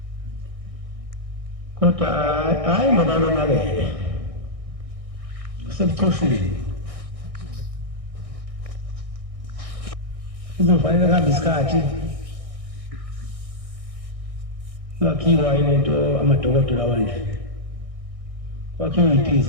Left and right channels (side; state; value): left; late; 1.6 ms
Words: kodwa hayi ngoba yonakele usebuchoshini kuzofanele kuhambe isikhathi ngakhiwa ilento amadokotela wanje kwakhiwa